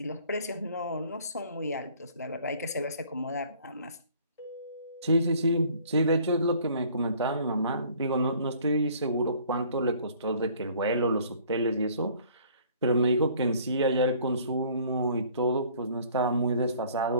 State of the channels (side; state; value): both; inverted; correlation -0.55